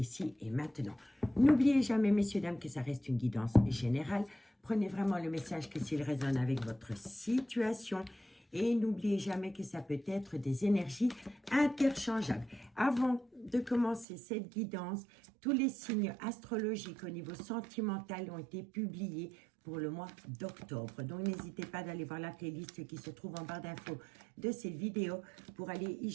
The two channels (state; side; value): drops out; left; at 14.1 s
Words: et maintenant. N'oubliez jamais, messieurs, dames, que ça reste une guidance générale. Prenez vraiment le message que s'il résonne avec votre situation. Et n'oubliez jamais que ça peut être des énergies interchangeables. Avant de commencer cette guidance, tous les signes astrologiques au niveau sentimental ont été publiés pour le mois d'octobre. Donc, n'hésitez pas d'aller voir la playlist qui se trouve en barre d'infos de cette vidéo pour aller y